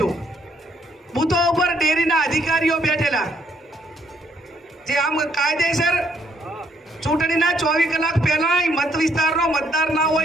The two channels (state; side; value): normal; both; correlation 0.69